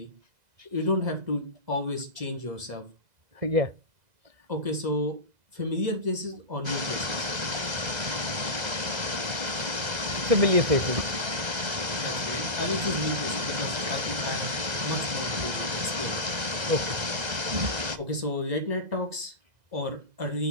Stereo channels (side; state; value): left; late; 2.0 ms